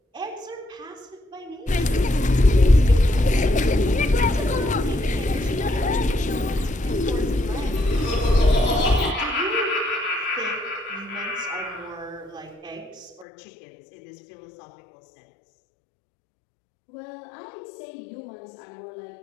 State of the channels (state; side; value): drops out; right; at 13.2 s